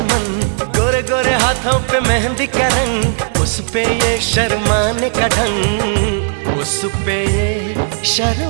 मन, गोरे गोरे हाथों पे मेहंदी का रंग, उस पे ये शर्माने का ढंग, उस पे ये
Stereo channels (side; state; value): left; silent; digital silence